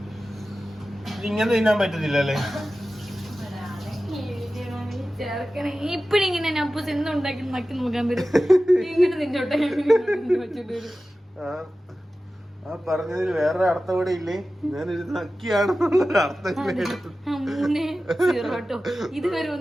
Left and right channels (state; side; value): normal; both; correlation 0.95